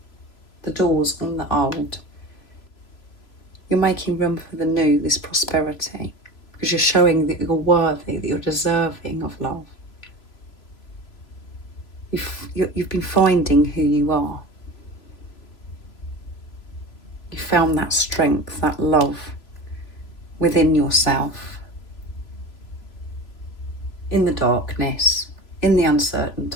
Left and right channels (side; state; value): right; late; 3.0 ms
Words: on the old, you're making room for the new, this prosperity, because you're showing that you're worthy, that you're deserving of love. You've been finding who you are. You found that strength, that love within yourself, in the darkness, in the uncertain